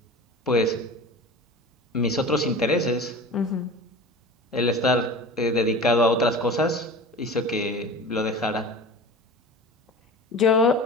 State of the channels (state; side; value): normal; both; correlation 0.35